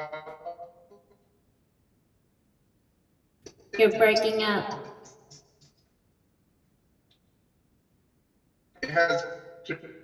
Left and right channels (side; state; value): both; identical; correlation 1.00